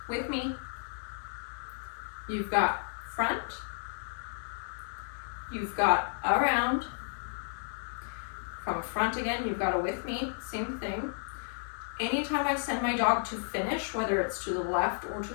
with me, you've got front, you've got around, from front again, you've got a with me, same thing. Anytime I send my dog to finish, whether it's to the left or to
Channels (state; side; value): silent; right; digital silence